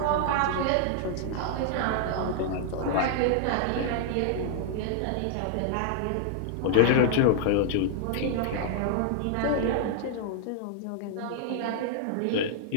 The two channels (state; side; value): different; both; correlation -0.01